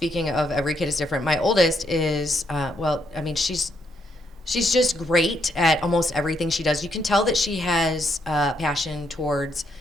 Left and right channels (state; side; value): normal; both; correlation 0.76